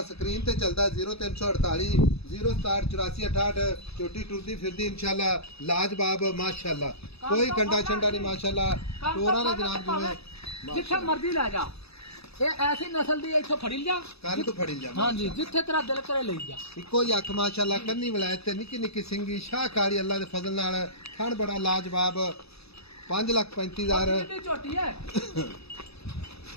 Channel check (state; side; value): late; right; 0.78 ms